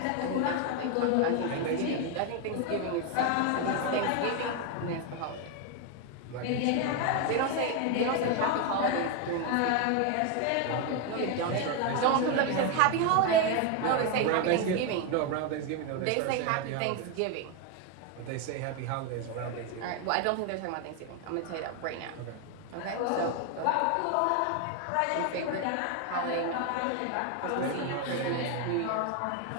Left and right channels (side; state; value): both; different; correlation 0.01